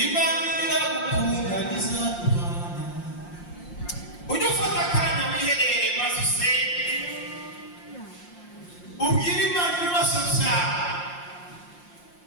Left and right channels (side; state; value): right; late; 5.7 ms